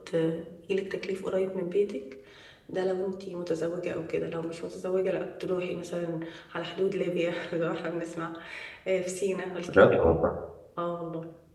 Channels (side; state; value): both; identical; correlation 1.00